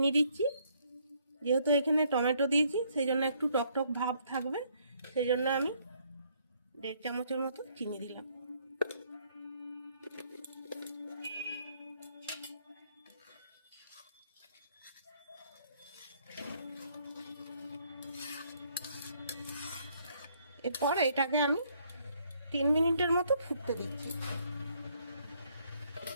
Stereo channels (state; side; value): inverted; both; correlation -0.68